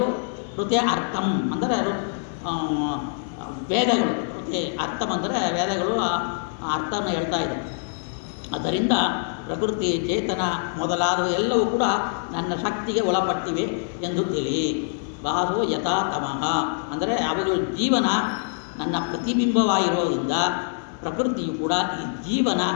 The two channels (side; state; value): right; silent; 62 dB below the other